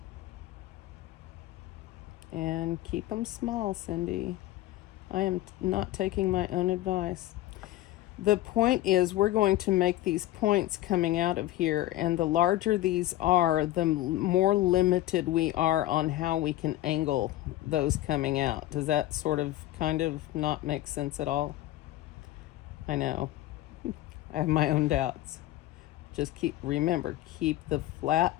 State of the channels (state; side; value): quieter; right; 15.4 dB